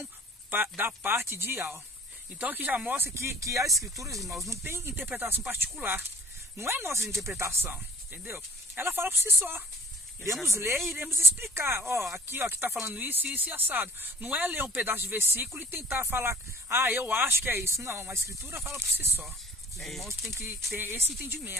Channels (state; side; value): normal; both; correlation 0.48